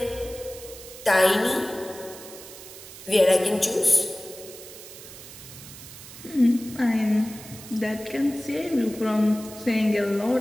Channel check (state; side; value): noise; right; hiss, 15 dB below the sound